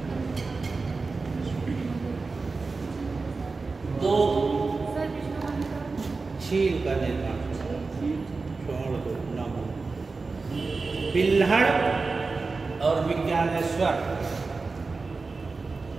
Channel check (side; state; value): left; quieter; 4.0 dB